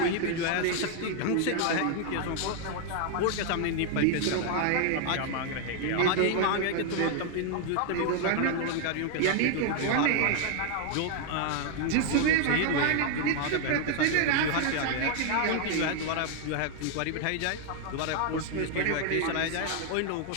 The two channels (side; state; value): both; different; correlation 0.00